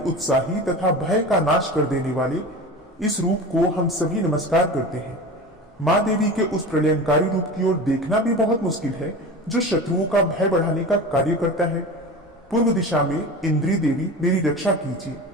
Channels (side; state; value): both; normal; correlation 0.31